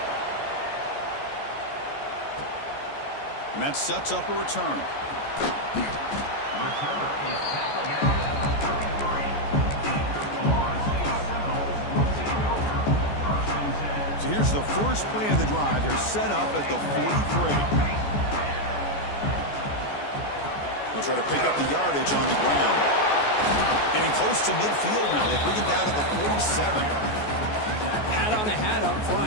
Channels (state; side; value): late; right; 14 ms